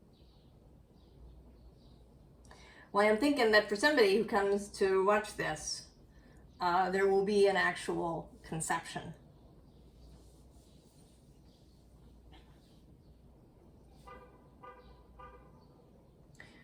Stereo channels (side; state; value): both; identical; correlation 1.00